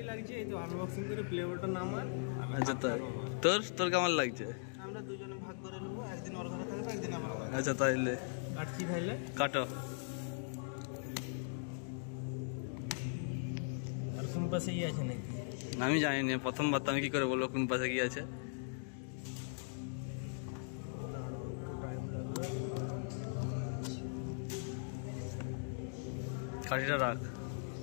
লাগছে, এই তো আনবক্সিং করে প্লে বাটন আমার। আচ্ছা, তোর তোর কেমন লাগছে? আমরা দুজনে ভাগ করে নেবো, একদিন ওর ঘরে থাকবে, একদিন আমার ঘরে। আচ্ছা তাইলে কাটছি, তাইলে কাটো। আর কোন পাশে ই আছে নাকি? আমি জানি না, প্রথমবার তো আমি কি করে বলবো কোন পাশে কি আছে। কাঠিটা রাখ।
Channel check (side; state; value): right; silent; digital silence